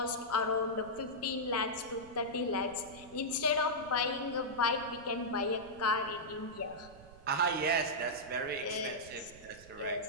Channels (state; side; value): noise; right; rumble, 20 dB below the sound